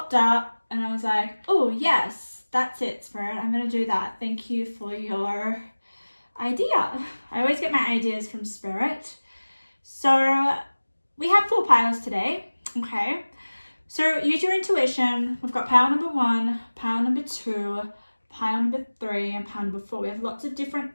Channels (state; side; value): inverted; both; correlation -1.00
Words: up, and I was like, oh yes, that's it, Spirit. I'm going to do that. Thank you for your idea. I always get my ideas from Spirit. So we have 4 piles today, okay? So use your intuition. We've got pile number 1, pile number 2, pile number 3, and pile number 4. We have lots of different